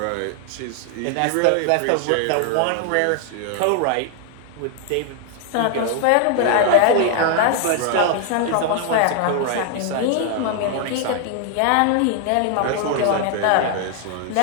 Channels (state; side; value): different; both; correlation 0.00